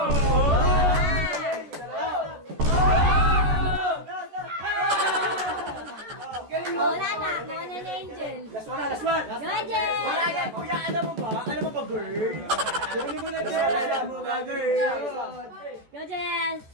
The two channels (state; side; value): late; left; 14 ms